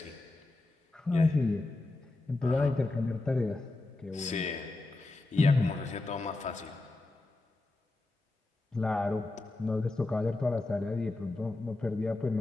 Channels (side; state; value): right; quieter; 3.0 dB